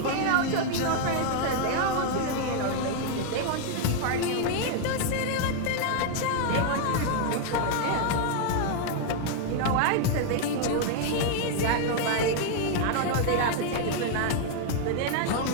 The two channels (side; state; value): both; different; correlation 0.00